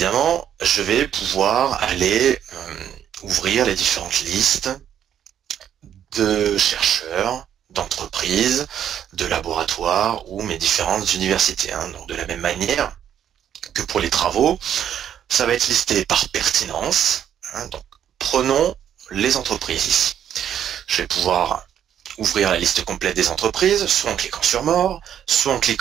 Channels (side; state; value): left; quieter; 9.7 dB